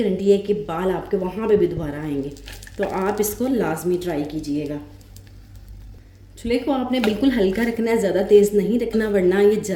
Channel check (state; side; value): identical; both; correlation 1.00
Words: है कि बाल आपके वहाँ पे भी दोबारा आएंगे। तो आप इसको लाजमी ट्राई कीजिएगा। चूल्हे को आपने बिल्कुल हल्का रखना है, ज़्यादा तेज़ नहीं रखना, वरना ये